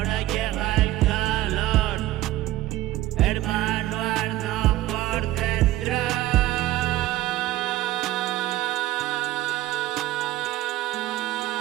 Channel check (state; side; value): quieter; left; 15.3 dB